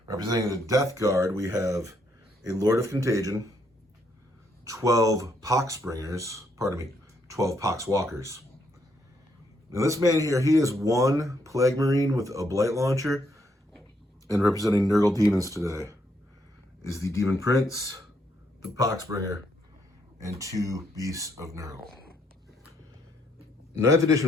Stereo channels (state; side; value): normal; both; correlation 0.73